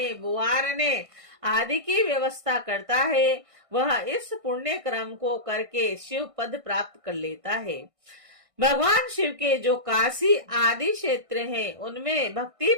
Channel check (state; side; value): late; left; 1.6 ms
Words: बुआरने आदि की व्यवस्था करता है वह इस पुण्य क्रम को करके शिव पद प्राप्त कर लेता है। भगवान शिव के जो काशी आदि क्षेत्र हैं उनमें भक्ति